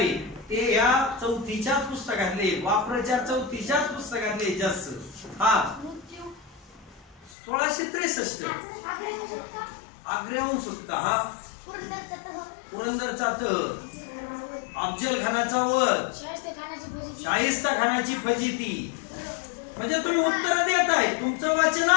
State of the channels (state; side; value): drops out; right; at 7.3 s